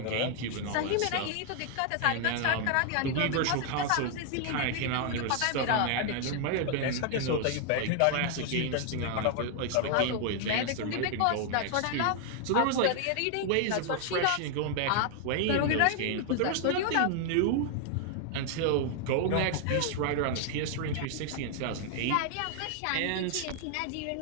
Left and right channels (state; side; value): different; both; correlation 0.00